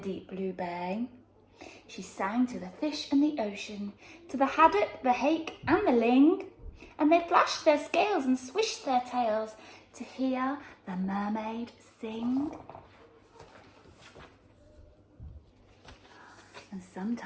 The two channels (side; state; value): both; identical; correlation 1.00